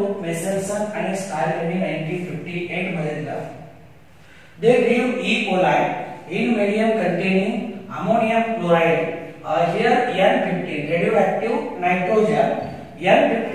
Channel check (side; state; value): both; identical; correlation 1.00